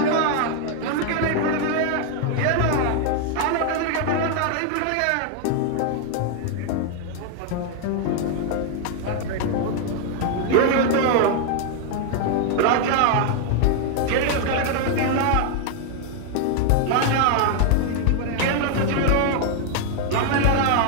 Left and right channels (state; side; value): different; both; correlation 0.00